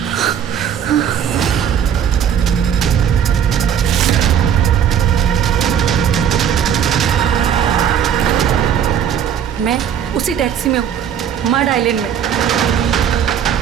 मैं उसी टैक्सी में हूँ, मड आइलैंड में।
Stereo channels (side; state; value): left; quieter; 8.7 dB